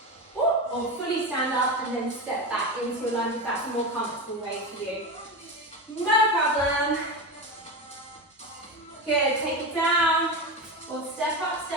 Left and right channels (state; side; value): normal; both; correlation 0.20